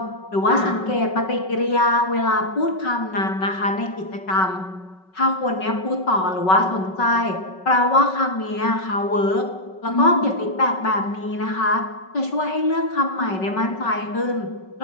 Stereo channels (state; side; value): late; right; 5.3 ms